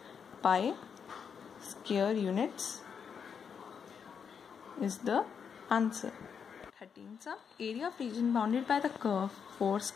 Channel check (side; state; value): right; quieter; 6.8 dB